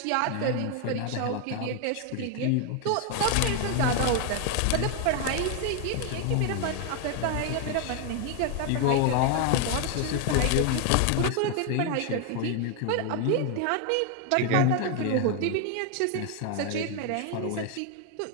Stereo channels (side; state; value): both; different; correlation 0.01